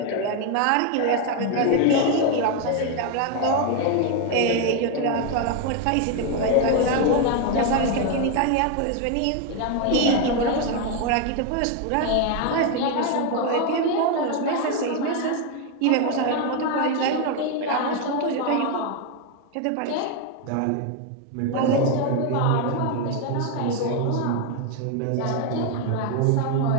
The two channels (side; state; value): both; different; correlation 0.01